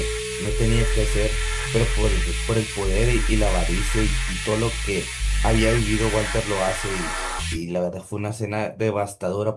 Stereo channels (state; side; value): identical; both; correlation 1.00